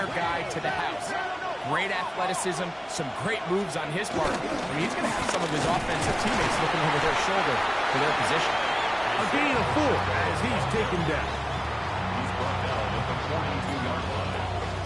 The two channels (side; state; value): both; identical; correlation 1.00